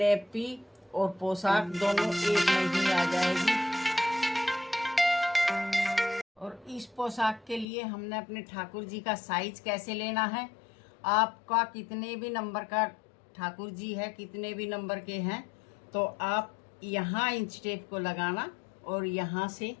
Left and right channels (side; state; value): right; drops out; at 7.7 s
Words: और पोशाक दोनों एक में ही आ जाएगी। और इस पोशाक के लिए हमने अपने ठाकुर जी का साइज कैसे लेना है, आपका कितने भी नंबर का ठाकुर जी है, कितने भी नंबर के हैं, तो आप यहाँ इंच टेप को लगाना और यहाँ से